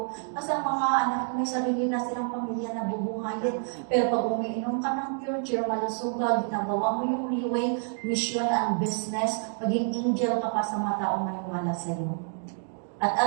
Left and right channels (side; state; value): left; silent; 59 dB below the other